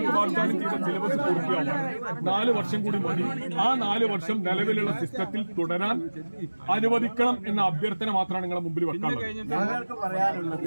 വാഗ്ദാനം ചെയ്ത സിലബസ് പൂർത്തിയാവാൻ 4 വർഷം കൂടി മതി. ആ 4 വർഷം നിലവിലുള്ള സിസ്റ്റത്തിൽ തുടരാൻ അനുവദിക്കണം എന്ന അഭ്യർത്ഥന മാത്രമാണ് നിങ്ങളുടെ മുമ്പിൽ വെക്കാനുള്ളത്.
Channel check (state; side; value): inverted; both; correlation -1.00